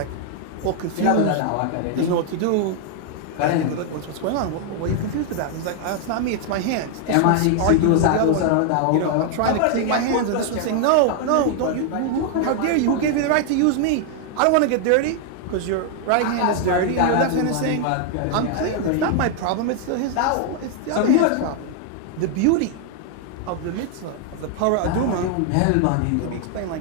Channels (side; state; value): both; different; correlation 0.00